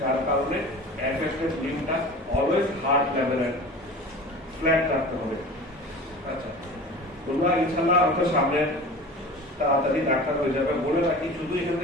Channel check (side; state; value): both; normal; correlation 0.37